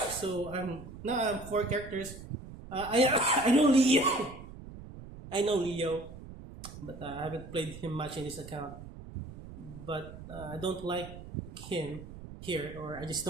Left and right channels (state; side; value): noise; right; rumble, 14 dB below the sound